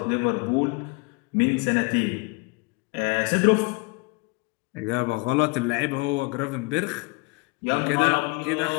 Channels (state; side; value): quieter; right; 28.4 dB